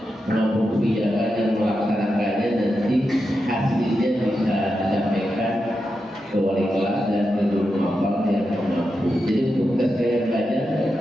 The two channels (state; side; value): normal; both; correlation 0.88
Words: menampung kebijakan dan melaksanakannya, nanti hasilnya bisa disampaikan ke wali kelas dan ke guru mapal yang mampu. Jadi untuk tes gaya belajar,